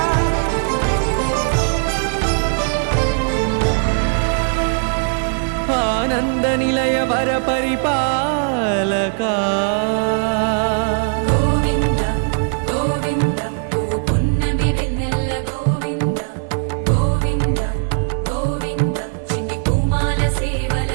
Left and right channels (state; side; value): silent; left; 67 dB below the other